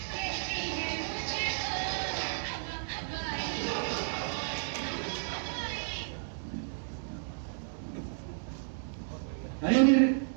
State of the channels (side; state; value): left; silent; digital silence